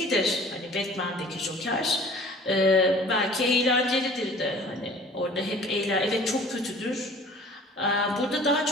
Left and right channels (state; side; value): normal; both; correlation 0.48